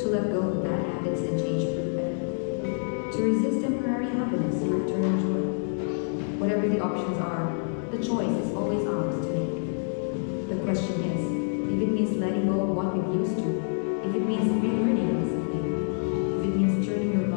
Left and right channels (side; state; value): right; silent; digital silence